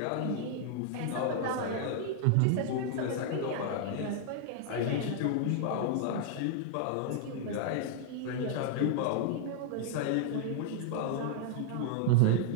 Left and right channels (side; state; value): both; different; correlation -0.01